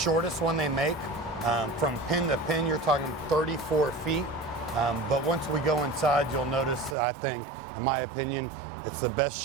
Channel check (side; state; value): left; drops out; at 7.0 s